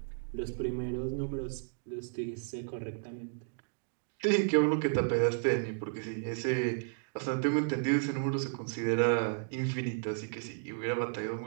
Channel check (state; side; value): silent; left; digital silence